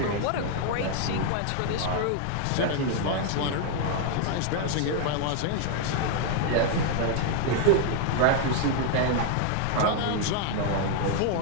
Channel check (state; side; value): different; both; correlation 0.00